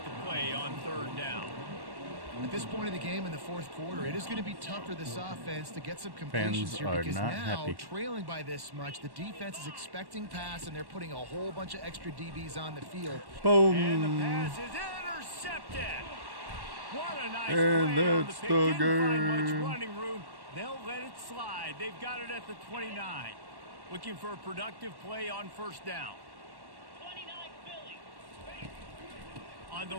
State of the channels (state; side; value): late; left; 1.1 ms